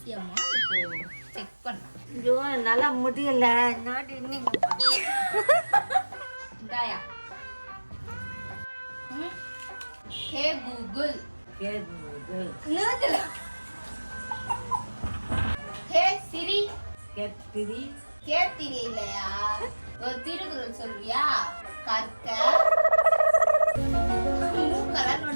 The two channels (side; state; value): both; inverted; correlation -1.00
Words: அம்மா. இப்போ செக் பண்ணேன். ஐயோ நல்லா முடியல. நாடு இன்னைக்கு இந்தாயா. ஹே கூகுள். ஹே சிரி. கேத்திரி இல்லையா? ஒரு திருக்குறள் சொல்றியா? கற்க கலர்